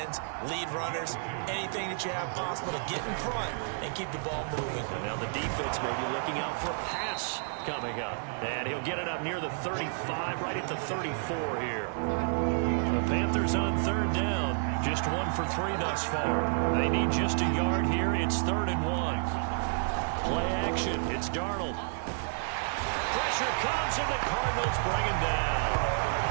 lead runners, anything that you have possible to get in front and keep the ball moving. And now the defense may be looking out for a pass coming up. And he'll get it up near the 35, right at the 34 here. The Panthers on third down. Just 1 for 3 thus far. They need just a yard here. It's 3rd and 1. Play action. It's Darnold. Pressure comes, and the Cardinals bring him down.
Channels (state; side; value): silent; left; 57 dB below the other